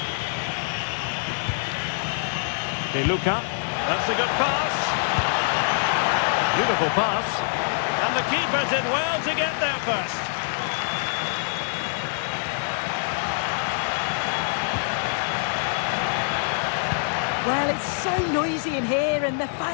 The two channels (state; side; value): silent; right; 58 dB below the other